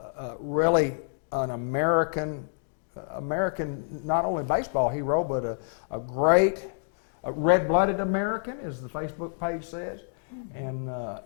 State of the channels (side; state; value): right; silent; digital silence